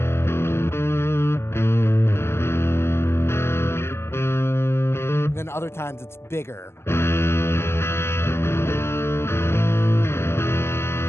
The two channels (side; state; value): right; late; 0.12 ms